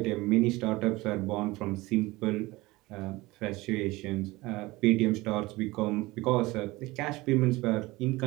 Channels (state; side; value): quieter; left; 20.8 dB